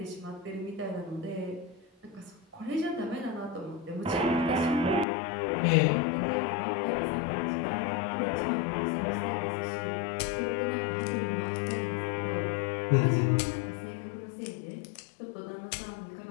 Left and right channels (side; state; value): right; drops out; at 5.1 s